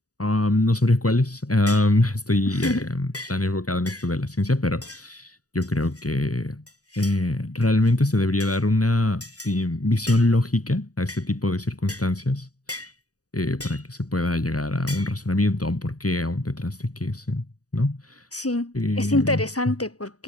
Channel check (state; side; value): late; right; 0.67 ms